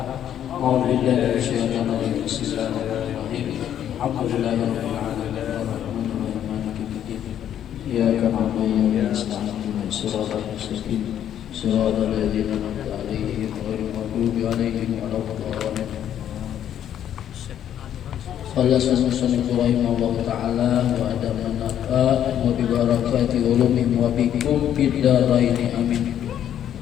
A'udzubillahi minasyaitonir rajim. Bismillahirrahmanirrahim. Alhamdulillahirabbil alamin arrahmanirrahim maliki yaumiddin. Iyyaka na'budu wa iyyaka nasta'in ihdinas siratal mustaqim siratal ladzina an'amta 'alaihim ghairil maghdubi 'alaihim waladdallin. Allah subhanahu wa ta'ala wa adaman nafa wa bibarakati ulumim wa bikum bidaraini amin.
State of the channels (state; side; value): quieter; right; 10.3 dB